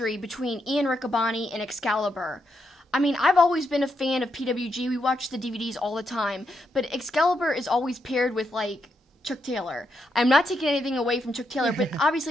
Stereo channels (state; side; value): normal; both; correlation 0.81